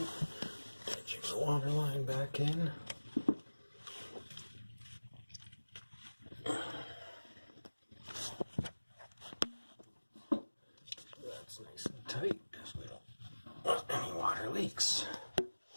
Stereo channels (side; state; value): both; inverted; correlation -1.00